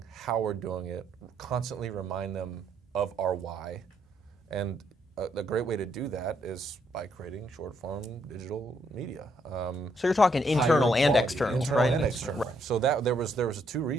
how we're doing it, constantly remind them of our why. And a great way to do that is by creating short-form digital media. So you're talking internal and external, right? Internal and external. Right. So there was two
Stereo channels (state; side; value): normal; both; correlation 0.73